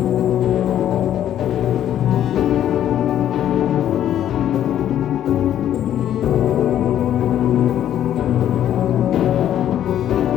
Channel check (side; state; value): right; quieter; 11.0 dB